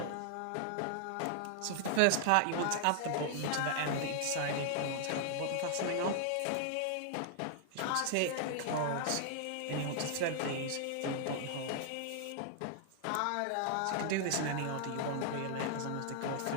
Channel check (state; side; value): different; both; correlation 0.00